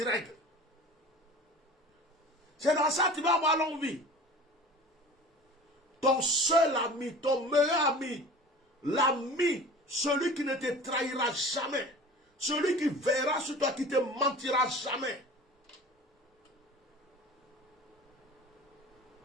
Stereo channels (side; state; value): both; normal; correlation 0.40